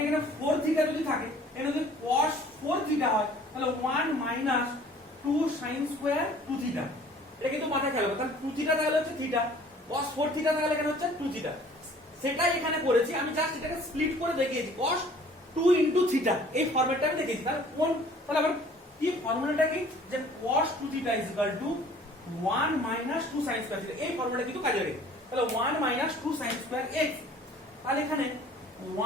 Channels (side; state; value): both; normal; correlation 0.52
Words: এখানে 4θ যদি থাকে, এটা যদি cos 4θ হয় তাহলে 1 মাইনাস 2 sin স্কয়ার 2θ, এটা কিন্তু মাথায় খেয়াল রাখবে। তাহলে 2θ থাকলে হচ্ছে θ, cos 4θ থাকলে এখানে হচ্ছে 2θ, সেটাই এখানে করেছি আমি, জাস্ট এটাকে স্প্লিট করে দেখিয়েছি cos 2 * θ, এই ফরম্যাটটা আমি দেখিয়েছি। তাহলে আবার কি ফর্মুলাটা কি যে cos 2θ = 1 মাইনাস 2 sin স্কয়ার θ, এই ফর্মুলাটা কিন্তু কাজে লাগে। তাহলে 1 মাইনাস 2 sin স্কয়ার x, তাহলে এখানে